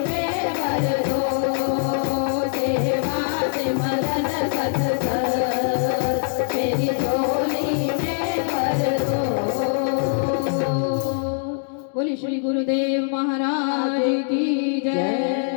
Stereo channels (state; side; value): silent; right; digital silence